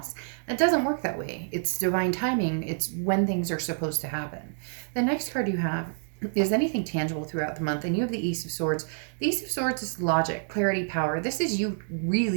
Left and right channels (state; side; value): silent; left; digital silence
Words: It doesn't work that way. It's divine timing. It's when things are supposed to happen. The next card you have is anything tangible throughout the month, and you have the Ace of Swords. The Ace of Swords is logic, clarity, power. This is you